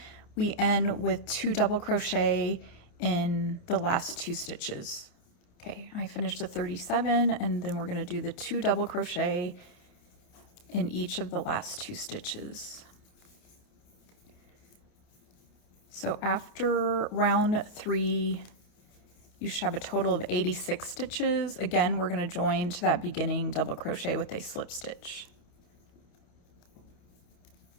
we end with 2 double crochet in the last 2 stitches. Okay, I finished the 37, and then we're gonna do the 2 double crochet in each of the last 2 stitches. So after round 3, you should have a total of 86 stitches. Again, we're going to join to that beginning double crochet with a slip stitch.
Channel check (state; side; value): late; right; 28 ms